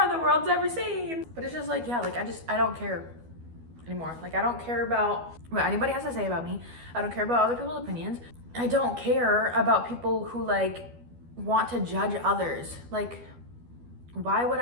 the world's ever seen. But it's just like, yeah, like, I don't care anymore. Like, I don't care about what anybody has to say about me. I don't care about other people's opinions. I don't care about people who, like, want to judge others. Like, why would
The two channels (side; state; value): left; late; 12 ms